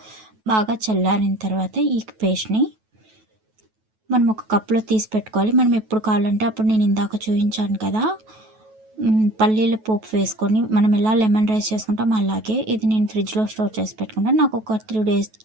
బాగా చల్లారిన తర్వాత ఈ పేస్ట్ని మనం ఒక కప్లో తీసి పెట్టుకోవాలి. మనం ఎప్పుడు కావాలంటే అప్పుడు, నేను ఇందాక చూపించాను కదా పల్లీల పోపు వేసుకొని మనం ఎలా లెమన్ రైస్ చేసుకుంటాం అలాగే ఇది నేను ఫ్రిడ్జ్లో స్టోర్ చేసి పెట్టుకుంటాను. నాకు ఒక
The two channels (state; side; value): late; left; 9.2 ms